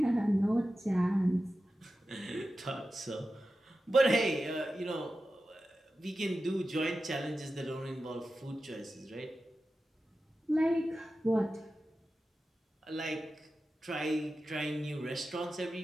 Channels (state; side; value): normal; both; correlation 0.93